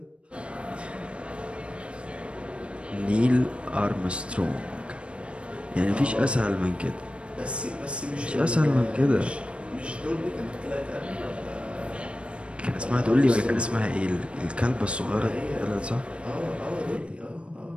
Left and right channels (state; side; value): late; left; 0.059 ms